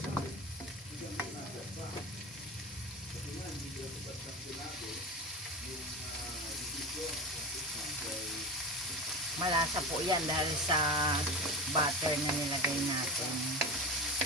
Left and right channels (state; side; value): normal; both; correlation 0.25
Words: Malasa po yan dahil sa butter na nilagay natin.